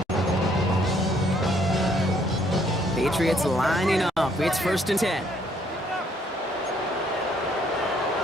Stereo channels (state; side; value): normal; both; correlation 0.67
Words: Patriots lining up. It's first and 10.